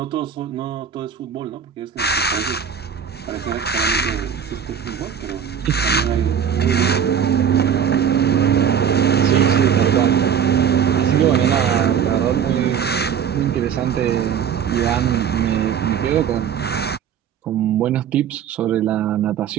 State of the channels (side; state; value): left; quieter; 8.0 dB